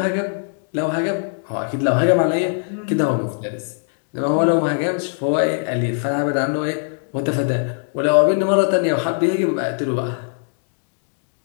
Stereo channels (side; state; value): right; silent; digital silence